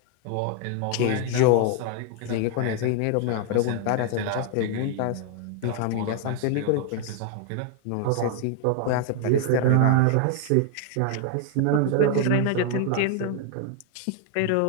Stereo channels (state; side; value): different; both; correlation 0.00